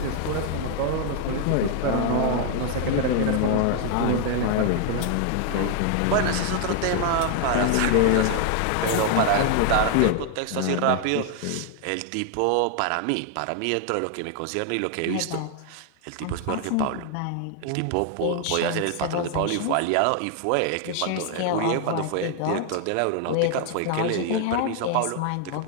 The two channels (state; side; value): different; both; correlation 0.00